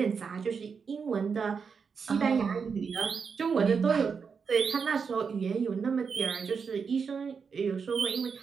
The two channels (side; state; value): left; quieter; 5.8 dB